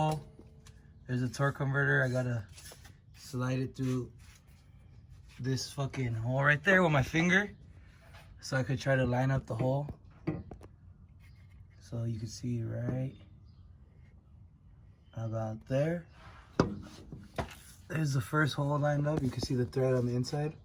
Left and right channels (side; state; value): both; identical; correlation 1.00